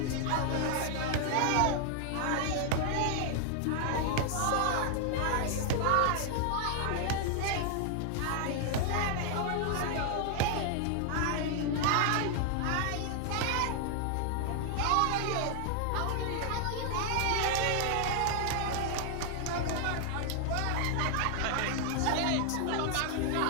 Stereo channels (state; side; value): different; both; correlation 0.00